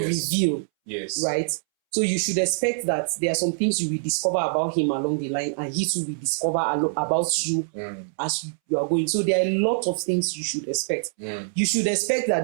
Yes. Right? So you should expect that there are some things you will discover about him along the line, and he too will discover about you as you are going. So there are a lot of things you should expect. You should expect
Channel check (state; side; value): silent; left; 62 dB below the other